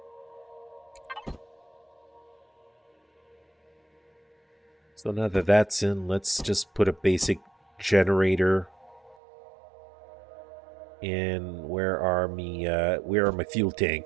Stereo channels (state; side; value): drops out; left; at 9.2 s